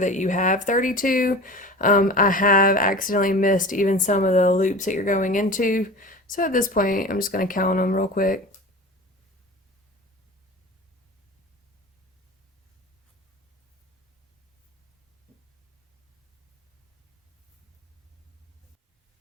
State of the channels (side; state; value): both; normal; correlation 0.35